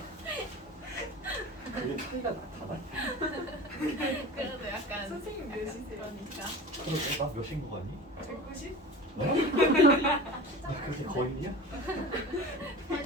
그게 차이가 나타나? 그래도 약간 선생님 몇이세요? 그러니까 그러게 나 몇인 거 같니? 190? 나 그렇게 거인이야?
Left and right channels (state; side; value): normal; both; correlation 0.35